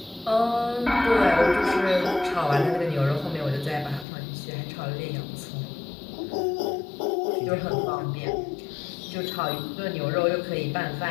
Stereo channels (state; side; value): drops out; right; at 4.0 s